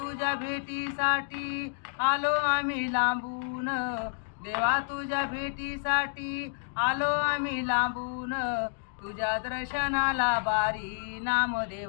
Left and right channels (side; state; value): right; silent; digital silence